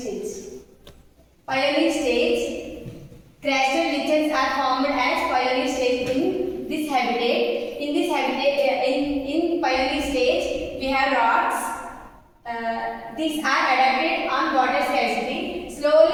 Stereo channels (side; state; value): both; identical; correlation 1.00